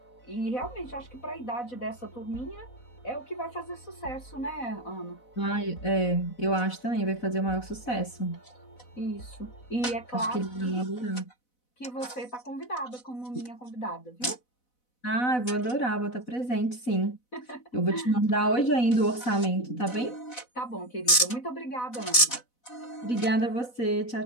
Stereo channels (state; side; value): late; right; 4.0 ms